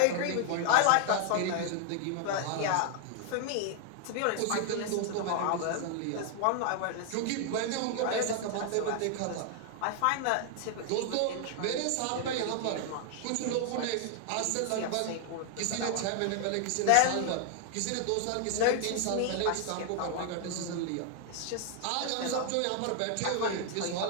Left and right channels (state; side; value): different; both; correlation 0.00